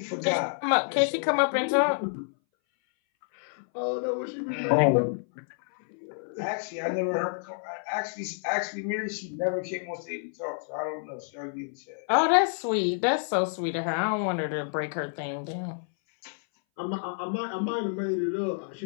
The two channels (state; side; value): silent; right; 59 dB below the other